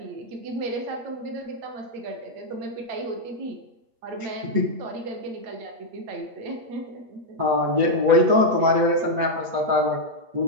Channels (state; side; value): late; left; 8.5 ms